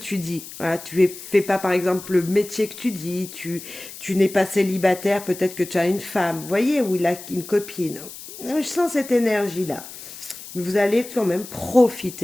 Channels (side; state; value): left; noise; hiss, 14 dB below the sound